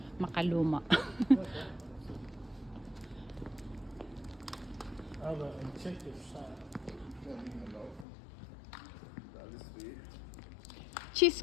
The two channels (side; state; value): right; drops out; at 8.1 s